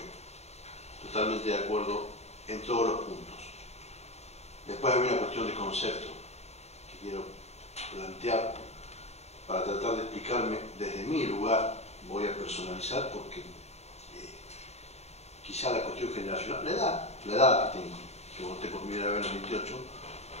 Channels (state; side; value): late; right; 0.31 ms